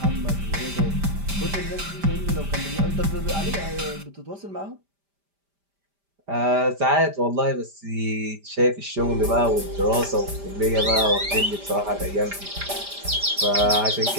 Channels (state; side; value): late; left; 5.0 ms